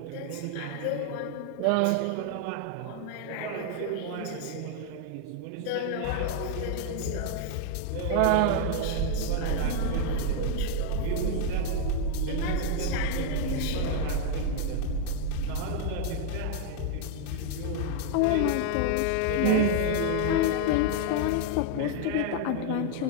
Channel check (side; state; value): both; different; correlation 0.00